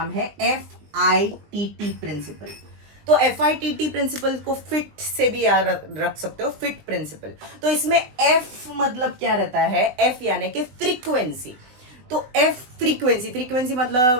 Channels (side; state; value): left; late; 20 ms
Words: है FITT प्रिंसिपल. तो FITT प्रिंसिपल को फिट से भी याद रख सकते हो, फिट प्रिंसिपल. तो इसमें F मतलब क्या रहता है? F यानी कि फ्रीक्वेंसी. तो F फ्रीक्वेंसी मतलब